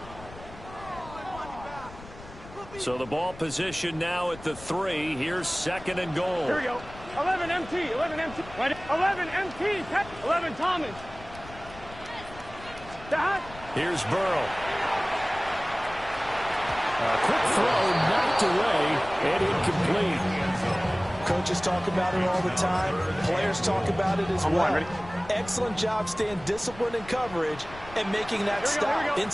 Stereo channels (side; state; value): left; noise; rumble, 17 dB below the sound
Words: So the ball position now at the 3. Here's 2nd and goal. Here we go. 11 MT. 11 MT. 11 MT. 11 Thomas. Here's Burrow. A quick throw knocked away and incomplete. Coaches talk about it all the time. Players talk about it as well. Excellent job staying disciplined in coverage and making that stop.